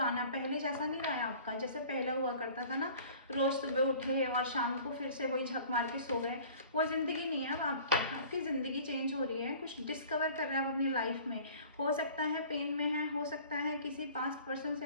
पहले जैसा नहीं रहा है आपका, जैसे पहले हुआ करता था ना, रोज सुबह उठे और शाम को फिर से वही झक मार के सो गए, वो ज़िंदगी नहीं है अब आपकी ज़िंदगी चेंज हो रही है। कुछ डिस्कवर कर रहे हैं आप अपनी लाइफ में। हो सकता है पेन में है, हो सकता है किसी पास्ट पर्सन से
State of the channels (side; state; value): both; inverted; correlation -0.47